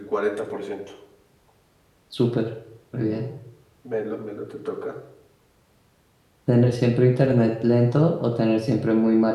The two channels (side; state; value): both; identical; correlation 1.00